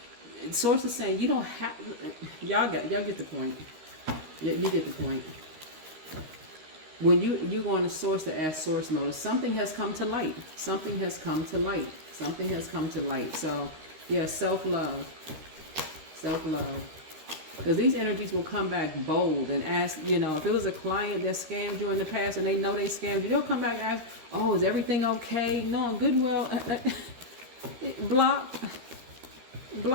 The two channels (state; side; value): late; left; 13 ms